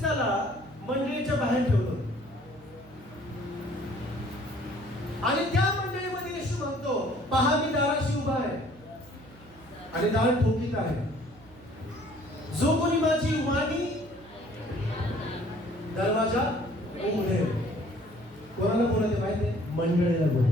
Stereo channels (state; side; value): noise; right; hum, 23 dB below the sound